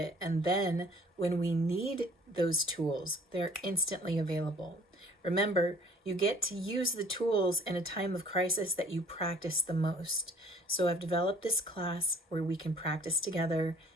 And then when we need those tools, they're instantly available. Remember, you get to use the tools in a time of crisis that you practice the most. So I've developed this class where we can practice together,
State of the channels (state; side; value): normal; both; correlation 0.55